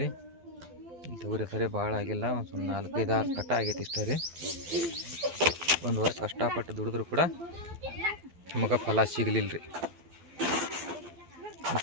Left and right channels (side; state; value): left; late; 12 ms